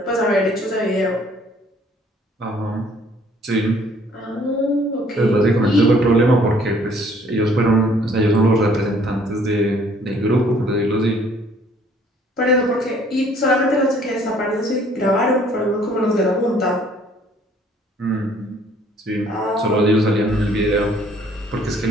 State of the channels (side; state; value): both; normal; correlation 0.60